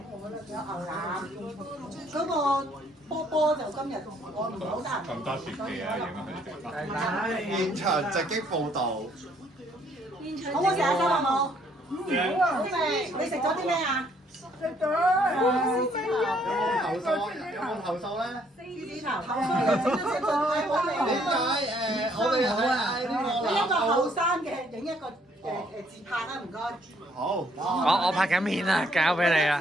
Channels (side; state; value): both; normal; correlation 0.66